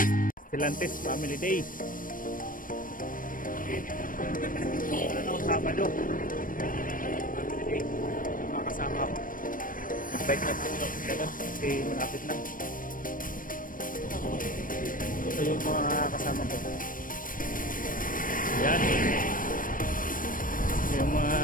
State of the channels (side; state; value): right; late; 0.40 ms